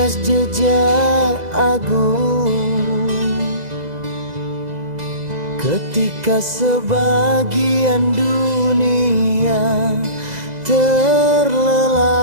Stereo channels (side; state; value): left; late; 2.0 ms